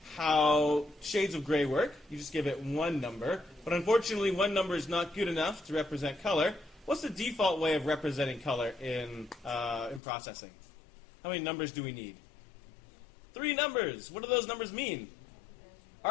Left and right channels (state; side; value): drops out; right; at 10.0 s